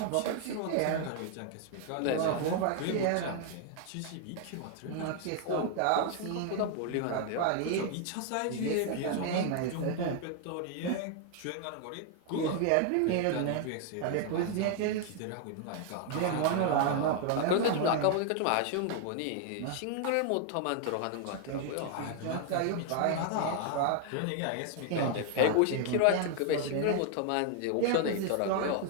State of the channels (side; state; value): both; different; correlation 0.00